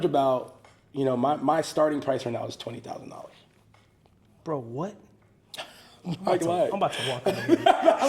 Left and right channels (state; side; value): identical; both; correlation 1.00